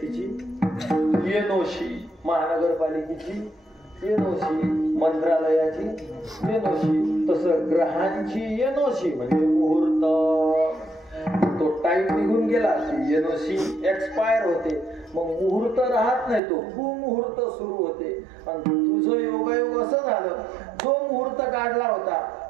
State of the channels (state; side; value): drops out; left; at 16.4 s